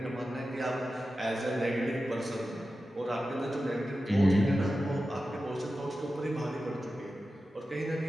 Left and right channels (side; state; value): both; normal; correlation 0.93